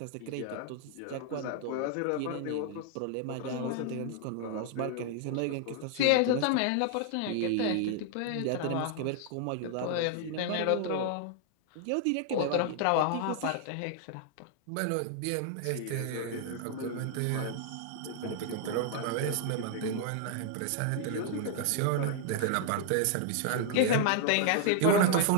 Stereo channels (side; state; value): both; different; correlation 0.00